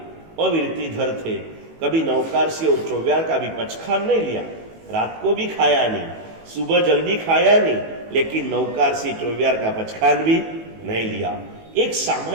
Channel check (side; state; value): left; late; 18 ms